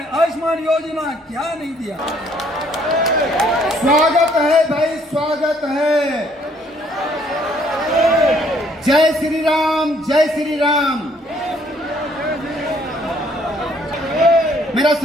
आयुष्मान योजना, क्या नहीं दिया। स्वागत है भाई, स्वागत है। जय श्री राम, जय श्री राम। मेरा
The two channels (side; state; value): both; normal; correlation 0.64